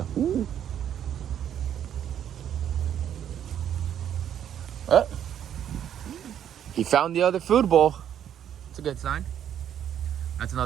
Oh. He found the other food bowl. It's a good sign. That's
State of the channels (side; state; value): left; quieter; 9.7 dB